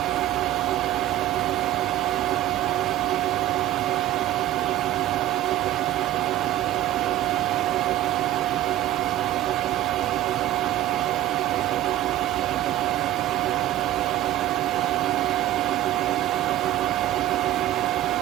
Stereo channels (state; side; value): quieter; left; 13.8 dB